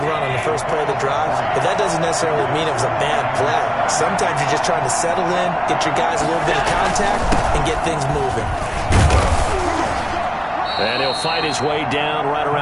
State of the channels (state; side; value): identical; both; correlation 1.00